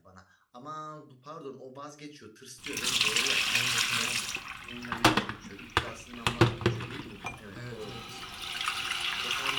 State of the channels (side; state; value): both; identical; correlation 1.00